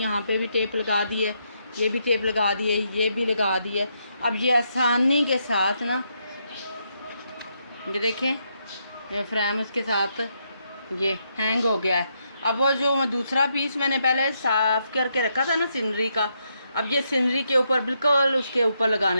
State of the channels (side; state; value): both; inverted; correlation -0.78